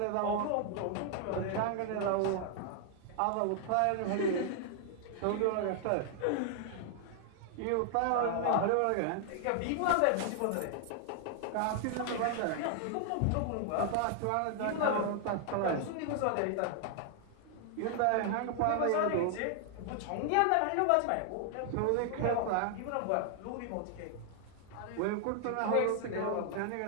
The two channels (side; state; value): both; different; correlation 0.00